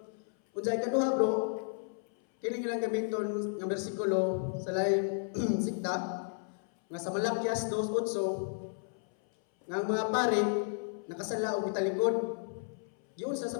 unsay kaduha bro kini ilang gamiton nga bersikulo sa laing sikta nga sa Malakias 2:8 nga ang mga pare nakasala og italikod giun sa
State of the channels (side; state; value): right; silent; 56 dB below the other